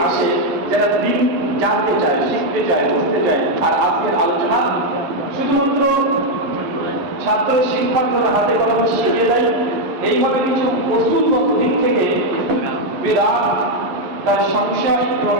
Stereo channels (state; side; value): late; left; 11 ms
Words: আসে যারা দিন জানতে চায়, শিখতে চায়, বুঝতে চায়। আর আজকের আলোচনা শুধুমাত্র ছাত্র শিক্ষার্থীদের হাতে কলমে শিখিয়ে দেয়। এইভাবে কিছু কৌশলগত দিক থেকে বিদআত, তার সংশয় এবং